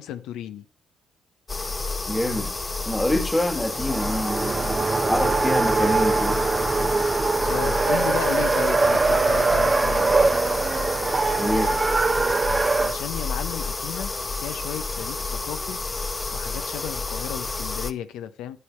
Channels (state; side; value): normal; both; correlation 0.90